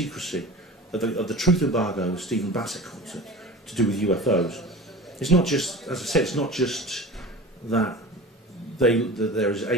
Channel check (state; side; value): normal; both; correlation 0.36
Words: of the truth embargo, as Stephen Bassett calls it, to do with UFOs, it's not just, as I said, it's not just that there's